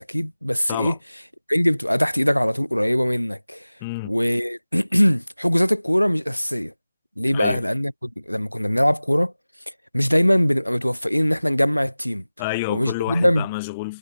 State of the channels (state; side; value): inverted; both; correlation -0.97